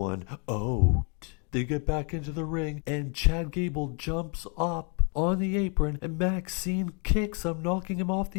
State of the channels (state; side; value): quieter; right; 35.7 dB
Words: out. They get back into the ring, and Chad Gable jumps up on the apron, and Maxine kicks him, knocking him off